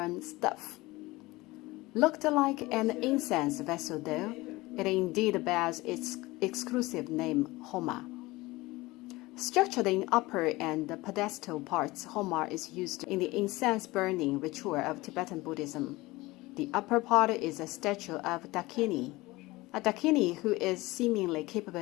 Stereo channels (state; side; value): quieter; right; 20.6 dB